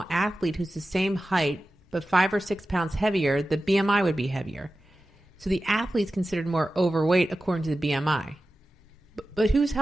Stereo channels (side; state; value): both; normal; correlation 0.94